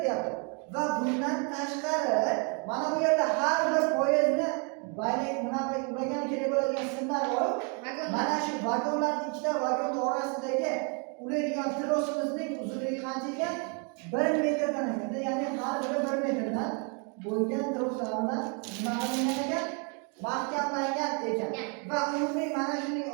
deyapti. Va bundan tashqari mana bu yerda har bir poyezdni bayrak bunaqa ulagan kerak bo'ladigan simlar bor. Mana shu vagonlarning ikkita vagon orasidagi ulaydigan trosimizning uzunligi qancha ekan? 1 metrdan ekan. Ya'ni har biri 1 metrdan bo'lgan troslardan bunaqa qilingan ekan, mahkamlangan ekan. Va umumiy mana shuning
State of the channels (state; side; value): quieter; left; 36.7 dB